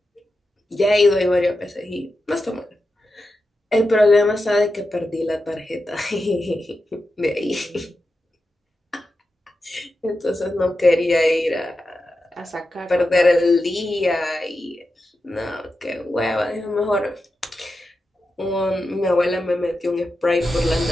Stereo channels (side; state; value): both; normal; correlation 0.90